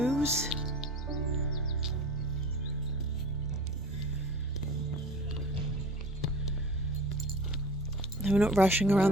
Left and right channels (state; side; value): normal; both; correlation 0.40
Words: We're not rushing around